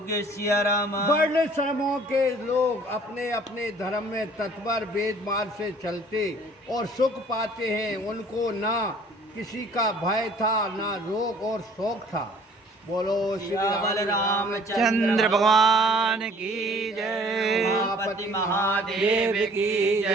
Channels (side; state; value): both; normal; correlation 0.53